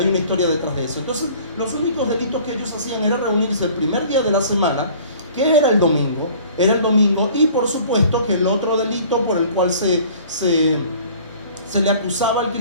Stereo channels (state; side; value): inverted; both; correlation -0.50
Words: una historia detrás de eso. Entonces, los únicos delitos que ellos hacían era reunirse el primer día de la semana, que era el domingo, y por supuesto que el otro delito por el cual se le acusaba al